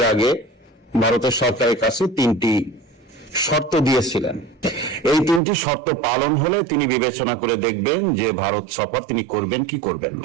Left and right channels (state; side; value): drops out; left; at 5.4 s